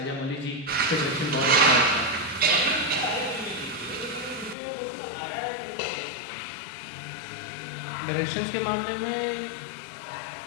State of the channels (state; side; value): drops out; right; at 4.5 s